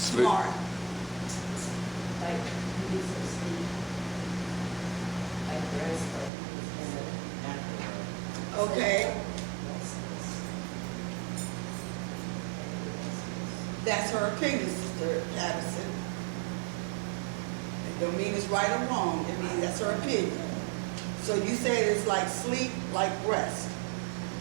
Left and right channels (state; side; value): drops out; left; at 6.3 s